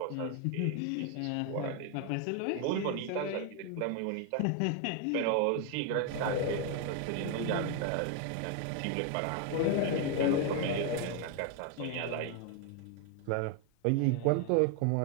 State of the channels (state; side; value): different; both; correlation 0.01